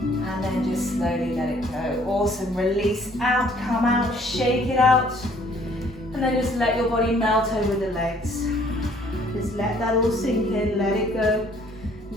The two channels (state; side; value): normal; both; correlation 0.60